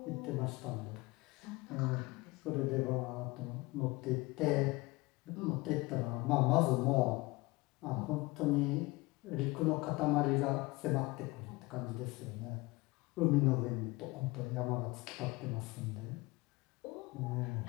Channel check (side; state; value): right; quieter; 22.7 dB